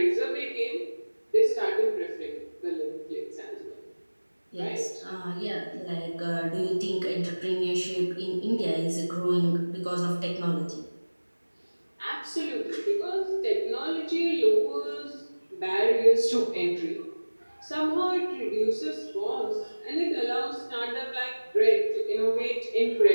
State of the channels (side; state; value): both; inverted; correlation -1.00